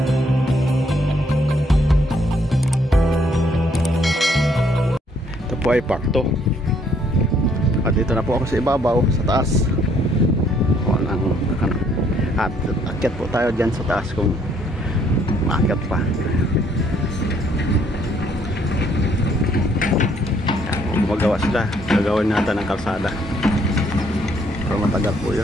Ito po ay pakto. At dito na po ako sa ibabaw, sa taas. At akyat po tayo dyan sa taas kung maakyat pa. Kung gumagawa sila, gagawin natin ng kalsada. Pero matagal po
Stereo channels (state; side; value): normal; both; correlation 0.67